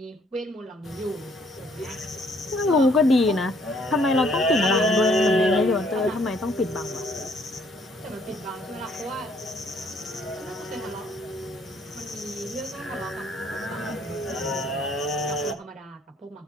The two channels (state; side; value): normal; both; correlation 0.64